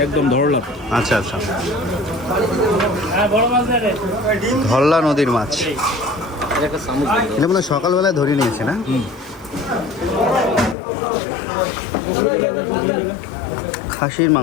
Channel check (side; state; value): right; drops out; at 10.8 s